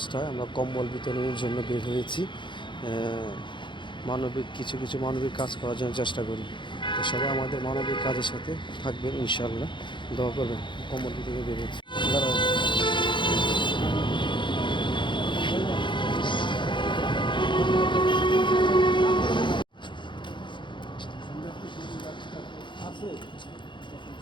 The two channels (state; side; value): late; right; 0.23 ms